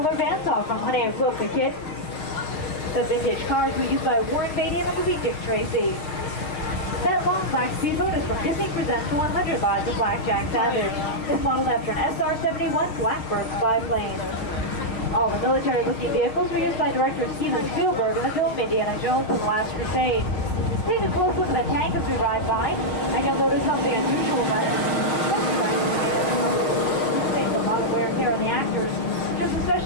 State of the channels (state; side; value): late; right; 6.5 ms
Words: vans off from Honey, I Broke the Kid. The vintage cars were used by Warren Beatty in the movie Dick Tracy. That long black speedboat is from Disney Presents the 100 Lots of Blackjack Savage. It's modeled after an SR-71 Blackbird biplane. All the military-looking vehicles were used by director Steven Spielberg in the film Indiana Jones and the Last Crusade. Take a close look at the tank as we ride by, and you'll notice something unusual about it. Things a lot of wear and tear on the actors. Just